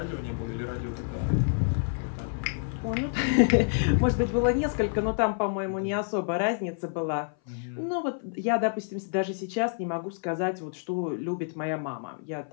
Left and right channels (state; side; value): silent; right; 57 dB below the other